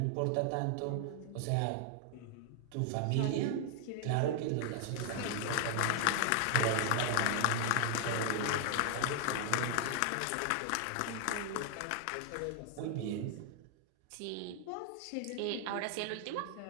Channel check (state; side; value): different; both; correlation 0.00